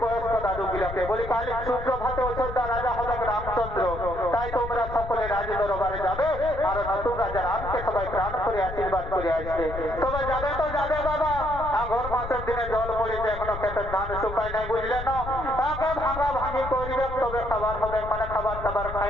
বয়স্ক দাদু গুলাকে বলি কাল সুপ্রভাতে অযোধ্যা রাজা হবে রামচন্দ্র, তাই তোমরা সকলে রাজ দরবারে যাবে আর নতুন রাজা রামকে সবাই প্রাণ করে আশীর্বাদ করে আসবে। তবে যাবে তো যাবে বাবা, আগর মাসের দিনে জল পড়েছে, এখনো খেতে ধান শুকায় নাই, বুঝলে না? আগে ভাঙা ভাঙি করবে, তবে খাবার হবে, মানে খাবার টাবার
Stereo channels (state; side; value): noise; left; rumble, 9 dB below the sound